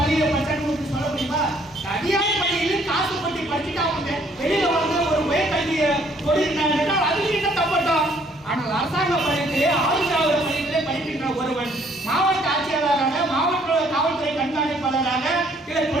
படித்தான்னு சொல்ல முடியுமா? தனியார் பள்ளியில் காசு பட்டி படிச்சுட்டு அவங்க வெளியில வந்து ஒரு உயர்கல்வியை கொடுக்கிறாங்க, அதுக்கு என்ன தப்பட்டோம்? ஆனால் அரசாங்க பள்ளியிலே ஆதரவாளர் பள்ளியிலே படிக்கின்ற ஒருவன் மாவட்ட ஆட்சியாளராக, மாவட்ட காவல்துறை கண்காணிப்பாளராக, இல்ல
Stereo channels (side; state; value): both; normal; correlation 0.63